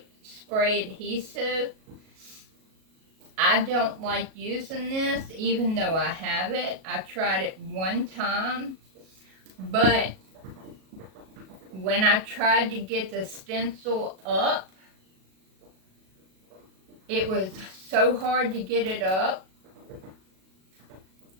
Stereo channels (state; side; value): late; left; 37 ms